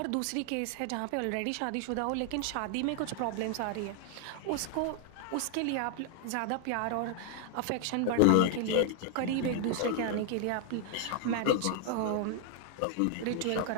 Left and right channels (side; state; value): both; different; correlation 0.00